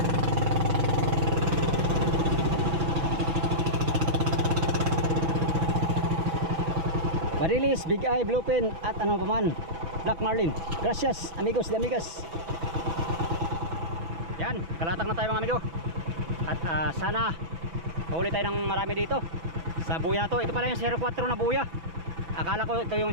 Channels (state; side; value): late; left; 6.0 ms